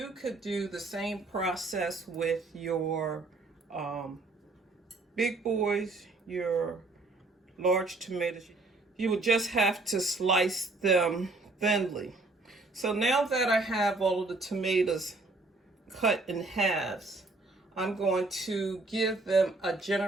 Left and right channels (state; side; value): quieter; left; 3.3 dB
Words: could do the same process with your big boys, your large tomatoes. You would just have to slice them thinly. So now that I have all of the tomatoes cut in halves, I'm going to give them a